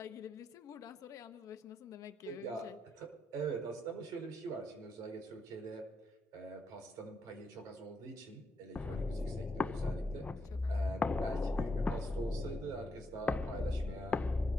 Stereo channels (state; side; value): normal; both; correlation 0.81